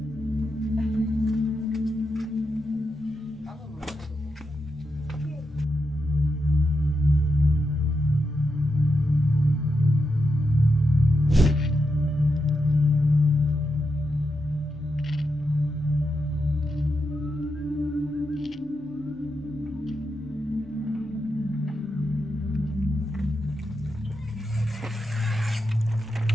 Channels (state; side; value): normal; both; correlation 0.86